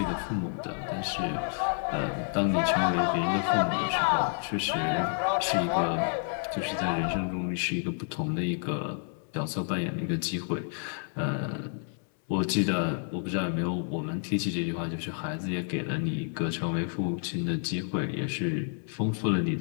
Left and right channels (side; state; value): right; silent; 58 dB below the other